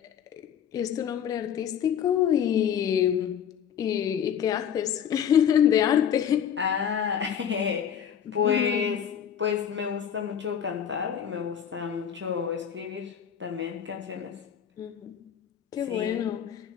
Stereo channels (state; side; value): quieter; right; 8.6 dB